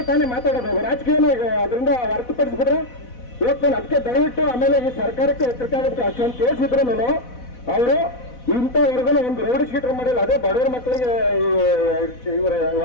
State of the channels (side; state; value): right; late; 4.1 ms